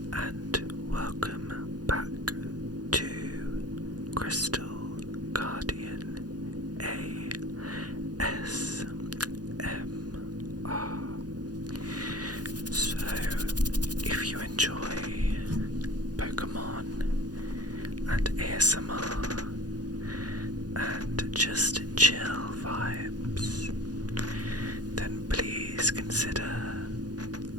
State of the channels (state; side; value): late; left; 0.69 ms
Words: and welcome back to Crystal Guardian ASMR. So, if you enjoy Pokémon and ASMR and just chill vibes, then please consider